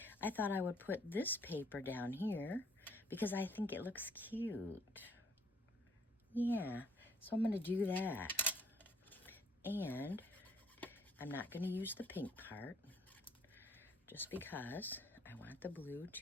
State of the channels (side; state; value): both; normal; correlation 0.64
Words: I thought I would put this paper down here because I think it looks cute. Yeah, so I'm going to do that. And I'm not going to use the pink part just because I want the blue